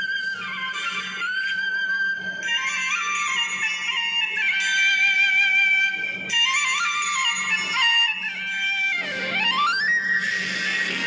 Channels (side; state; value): both; identical; correlation 1.00